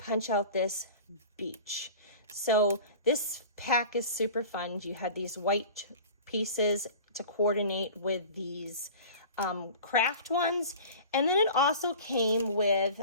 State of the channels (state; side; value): inverted; both; correlation -0.39